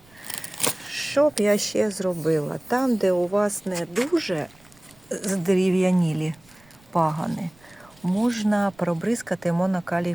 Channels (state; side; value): noise; right; rumble, 29 dB below the sound